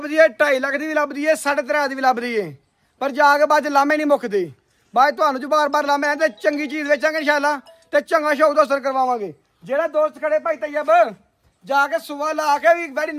ਏ 2.5 ਲੱਖ ਦੀ ਵੀ ਲੱਭਦੀ ਏ 3.5 ਦੀ ਵੀ ਲੱਭਦੀ ਏ ਪਰ ਜਾ ਕੇ ਬਾਅਦ ਲਾਮੇ ਨਹੀਂ ਮੁੱਕਦੇ ਬਾਅਦ ਤੁਹਾਨੂੰ ਜੋ ਬਾਰ-ਬਾਰ ਲਾਮੇ ਆਉਂਦੇ ਚੰਗੀ ਚੀਜ਼ ਵੇਚਾਂਗੇ ਇਨਸ਼ਾਅੱਲਾ ਤੇ ਚੰਗਾ ਸ਼ੌਕ ਦੋਸਤ ਕਰਵਾਵਾਂਗੇ ਜਿਹੜਾ ਦੋਸਤ ਖੜੇ ਭਾਈ ਤੈਯਬ ਜਾ ਕੇ ਸੁਆ ਲਾ ਕੇ ਵੀ ਬੜੀ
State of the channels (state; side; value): identical; both; correlation 1.00